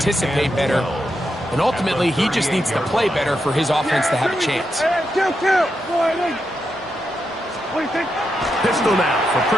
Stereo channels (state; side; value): normal; both; correlation 0.85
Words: better. And ultimately, he just needs to play better for his offense to have a chance. Pistol now for